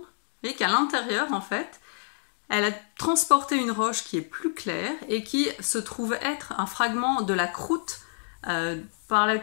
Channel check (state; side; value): silent; right; digital silence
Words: et qu'à l'intérieur, en fait, elle a transporté une roche qui est plus claire et qui se trouve être un fragment de la croûte par